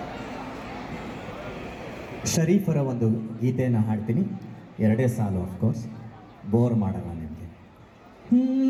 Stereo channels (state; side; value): identical; both; correlation 1.00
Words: ಶರೀಫರ ಒಂದು ಗೀತೆಯನ್ನು ಹಾಡ್ತೀನಿ. 2 ಸಾಲು, ಆಫ್ಕೋರ್ಸ್, ಬೋರ್ ಮಾಡಲ್ಲ ನಿಮಗೆ.